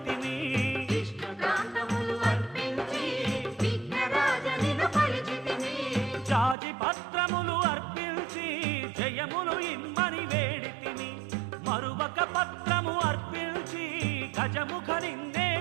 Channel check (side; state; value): left; drops out; at 6.6 s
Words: విష్ణుకాంతములు అర్పించి విఘ్నరాజనిను కొలిచితిని జాజి పత్రములు అర్పించి జయములు ఇమ్మని వేడితిని మరువక పత్రము అర్పించి గజముఖ నిన్నే